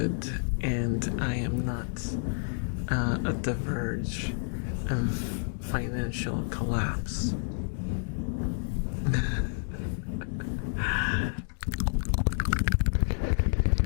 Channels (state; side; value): silent; right; digital silence